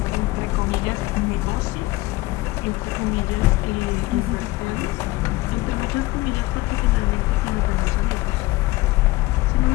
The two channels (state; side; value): quieter; right; 19.9 dB